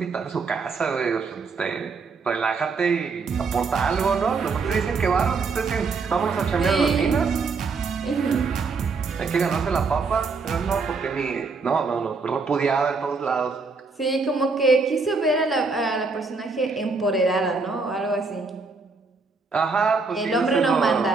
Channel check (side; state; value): left; quieter; 4.4 dB